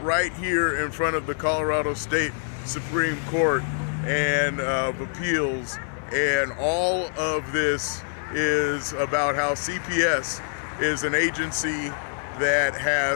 right here in front of the Colorado State Supreme Court and of Appeals, and all of this is about how CPS is an agency that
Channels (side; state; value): right; silent; digital silence